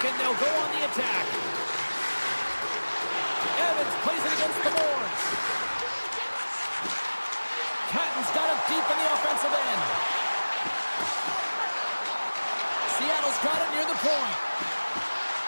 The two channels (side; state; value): both; inverted; correlation -1.00